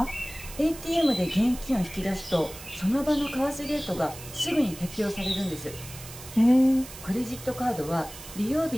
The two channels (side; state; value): right; noise; hiss, 15 dB below the sound